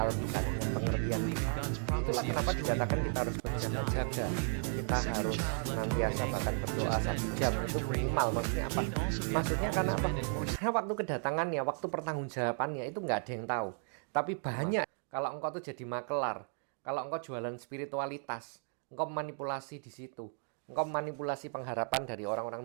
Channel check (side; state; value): left; silent; 55 dB below the other